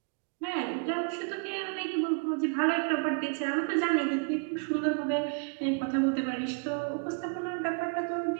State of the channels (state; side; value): quieter; left; 37.8 dB